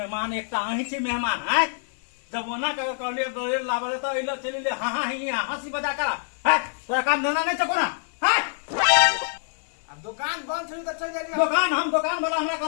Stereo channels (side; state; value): right; silent; digital silence